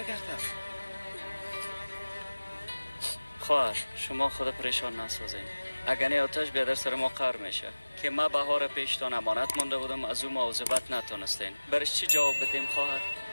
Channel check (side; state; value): both; inverted; correlation -1.00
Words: خواهر شما خود پریشان نسازین. اگر نه آتش بیادر سر ما قهر میشه که ما بهار پیشتان امانت مانده بودم از او مواظبت نتونستین. برش چی جواب بدیم خواهر؟